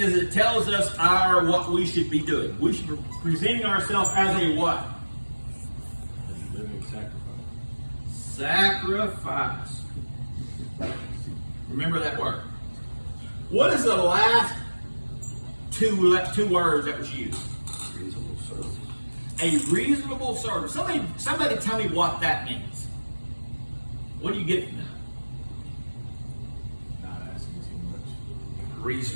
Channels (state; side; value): inverted; both; correlation -1.00